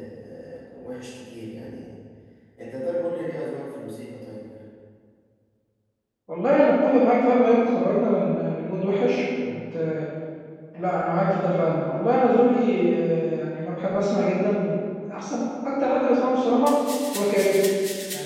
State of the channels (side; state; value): both; identical; correlation 1.00